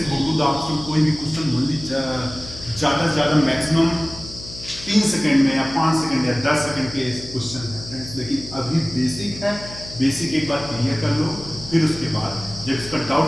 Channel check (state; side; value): noise; left; hum, 14 dB below the sound